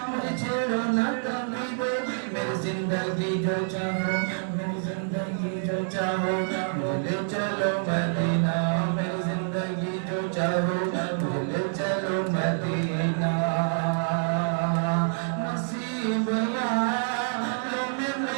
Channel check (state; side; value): silent; left; digital silence